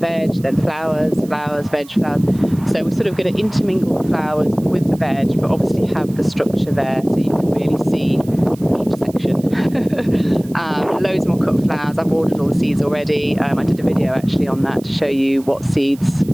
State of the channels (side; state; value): right; noise; hiss, 23 dB below the sound